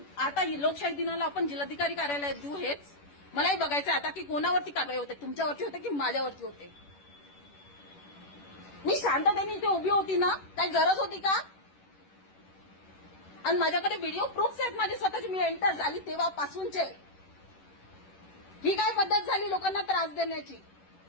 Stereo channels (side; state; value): right; late; 10 ms